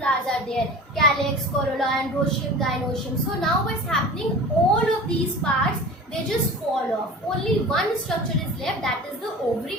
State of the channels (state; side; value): normal; both; correlation 0.37